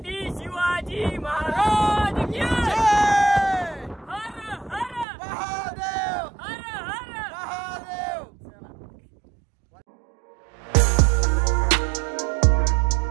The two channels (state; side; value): drops out; left; at 5.1 s